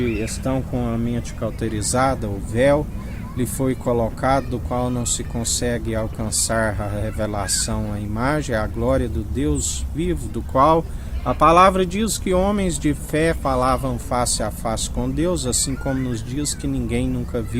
estão com a mente cauterizada, o véu lhe foi colocado, do qual não se consegue alcançar a revelação, a imagem, a glória do Deus vivo, do qual a palavra diz que homens de fé falavam face a face com Deus, assim como nos diz que ninguém nunca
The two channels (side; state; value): both; identical; correlation 1.00